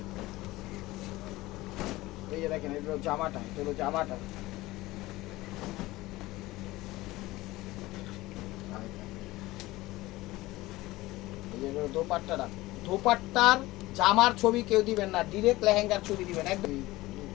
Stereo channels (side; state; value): right; quieter; 18.8 dB